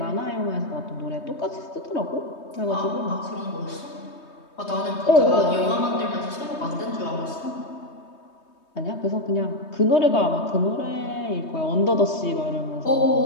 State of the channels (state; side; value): late; right; 3.2 ms